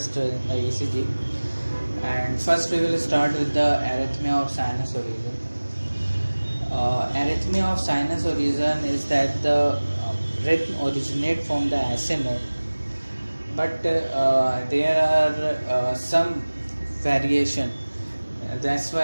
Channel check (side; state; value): both; inverted; correlation -1.00